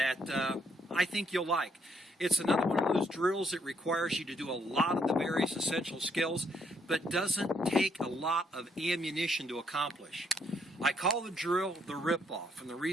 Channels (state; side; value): normal; both; correlation 0.73